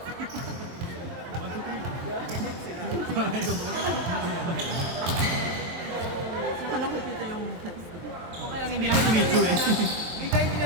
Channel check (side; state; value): left; late; 23 ms